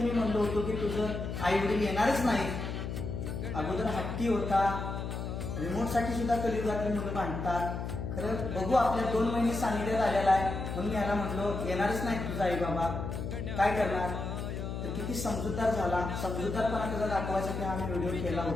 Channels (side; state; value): left; noise; hum, 4 dB below the sound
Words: म्हणलो होतो की तुझं आई वडील येणारच नाही. अगोदर हट्टी होता, रिमोटसाठी सुद्धा कलियुगातली मुलं भांडतात. खरं बघू, आपल्या 2 महिने सानिध्यात आलेला आहे म्हणून याला म्हणलो येणारच नाही तुझा आई बाबा, काय करणार. तर किती समजूतदार झाला. समजूतदारपणा त्याचा दाखवायसाठी हा मी व्हिडिओ केला